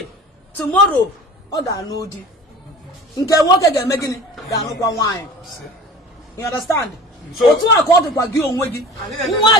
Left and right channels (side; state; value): both; normal; correlation 0.40